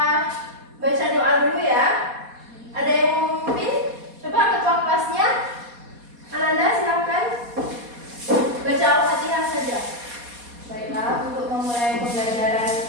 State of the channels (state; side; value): late; left; 4.2 ms